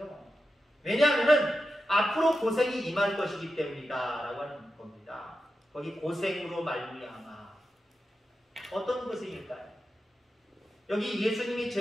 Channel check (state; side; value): normal; both; correlation 0.89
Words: 왜냐하면 앞으로 고생이 임할 것이기 때문이다 라고 하는 겁니다. 거기 고생으로 말미암아 어떤 고생일까요? 여기 예수님이